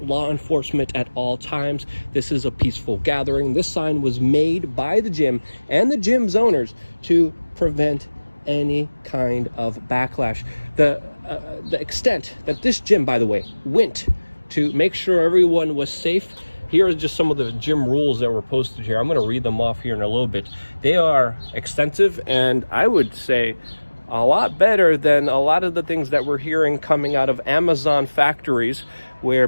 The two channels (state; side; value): inverted; both; correlation -1.00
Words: law enforcement at all times. This is a peaceful gathering." This sign was made by the gym and the gym's owners to prevent any kind of backlash. The extent that this gym, by the way, went to make sure everyone was safe. Here are just some of the gym rules that were posted here. I'm going to read them off here in a little bit. They are extensive, and I would say a lot better than a lot of the things that we're hearing coming out of Amazon factories, where